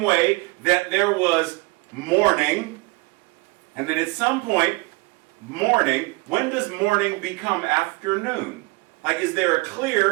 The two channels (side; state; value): left; quieter; 26.0 dB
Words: way that there was morning, and then at some point, morning, when does morning become afternoon? Like, is there a